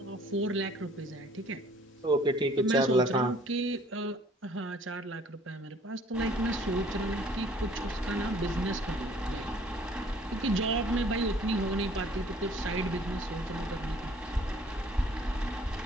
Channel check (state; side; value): normal; both; correlation 0.56